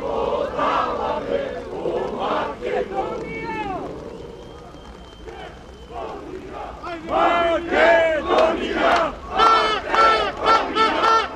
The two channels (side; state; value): both; identical; correlation 1.00